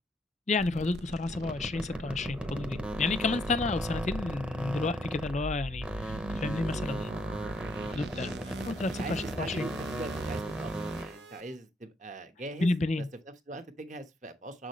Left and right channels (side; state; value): both; normal; correlation 0.73